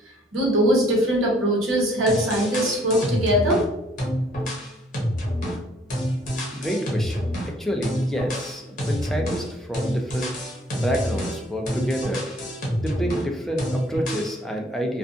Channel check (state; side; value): normal; both; correlation 0.61